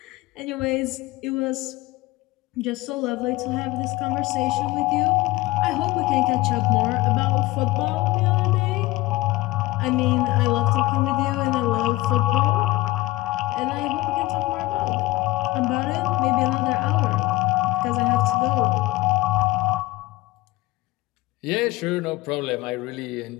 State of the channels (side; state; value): right; quieter; 19.0 dB